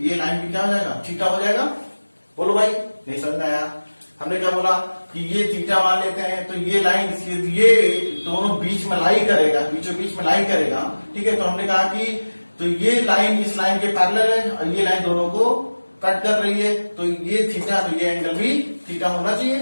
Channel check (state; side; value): inverted; both; correlation -1.00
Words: लाइन भी क्या हो जाएगा थीटा हो जाएगा। बोलो भाई, नहीं समझ में आया? हमने क्या बोला कि ये थीटा मान लेते हैं तो ये लाइन ये दोनों बीच में लाई करेगा, बीचों बीच में लाई करेगा, ठीक है। तो हमने कहा कि तो ये लाइन इस लाइन के पैरेलल है और ये लाइन दोनों को कट कर रही है, तो ये थीटा, तो ये एंगल भी थीटा होना